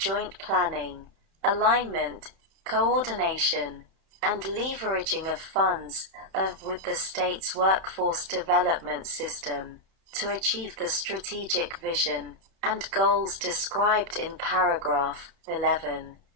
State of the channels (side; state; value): left; late; 31 ms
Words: planning, alignment, coordination, and leveraging of funds with the state's workforce development system to achieve the strategic vision and goals described in paragraph 11,